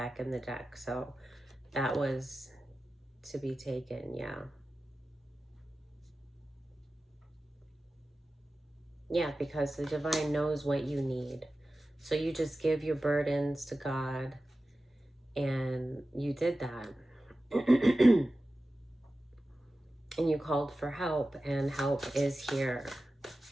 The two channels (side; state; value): both; normal; correlation 0.94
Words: in the deck. So that was to be taken, yeah. Yeah, because the divine knows what you need. So you just give your burdens to God, and you did that. And you called for help, and help is here.